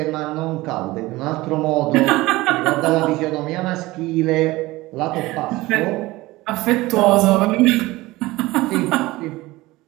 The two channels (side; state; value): left; quieter; 19.5 dB